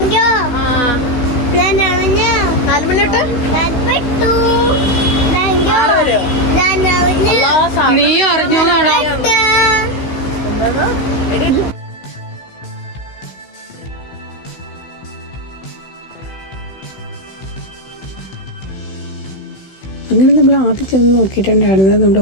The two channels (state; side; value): late; right; 16 ms